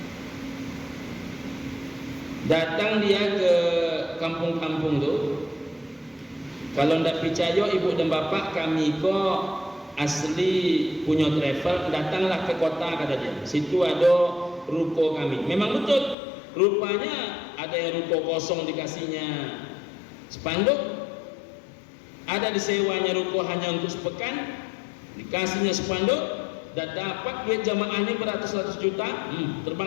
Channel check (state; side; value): drops out; right; at 16.2 s